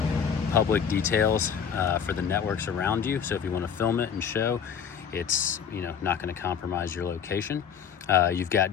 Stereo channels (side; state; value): right; quieter; 7.5 dB